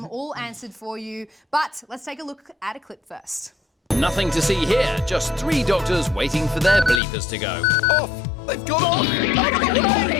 all answered for you. But let's take a look at a clip first. Nothing to see here, just 3 doctors waiting for their bleepers to go. Off! They've gone off! Out of the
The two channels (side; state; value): right; drops out; at 7.0 s